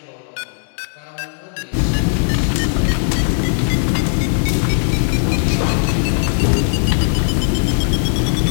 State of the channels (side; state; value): right; silent; 68 dB below the other